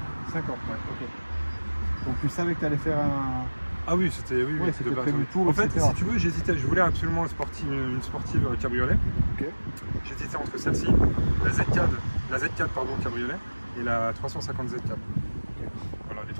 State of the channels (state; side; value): inverted; both; correlation -1.00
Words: 5 ans, ouais, ok. Donc tu savais que tu allais faire un... Ah oui, c'était prévu tour, en fait, etc. si tu veux, j'hésitais. Je voulais absolument une sportive cabriolet. Okay. J'hésitais entre celle-ci, la Z4 pardon, cabriolet, et la 350 Z4. Okay. Voilà, les